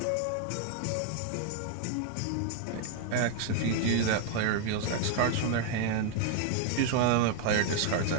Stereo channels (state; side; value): different; both; correlation 0.00